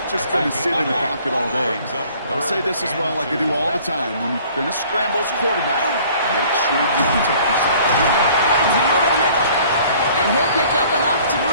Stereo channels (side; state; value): both; inverted; correlation -0.53